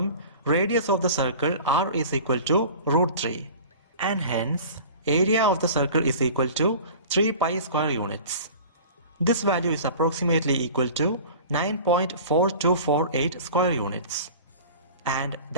radius of the circle r is equal to root 3. And hence, area of the circle is equal to 3 pi square units. This value is approximately equal to 9.4248 square units. And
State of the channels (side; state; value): both; inverted; correlation -0.40